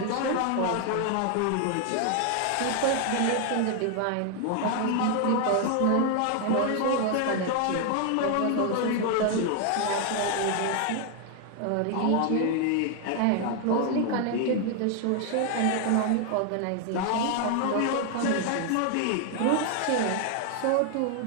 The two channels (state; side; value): different; both; correlation 0.00